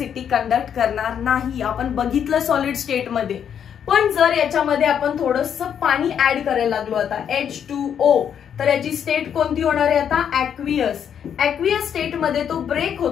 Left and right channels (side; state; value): right; quieter; 8.5 dB